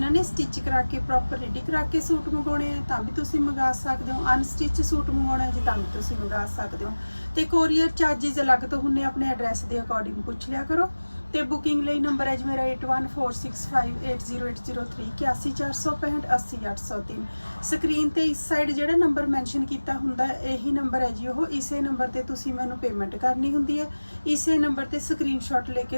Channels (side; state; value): both; inverted; correlation -1.00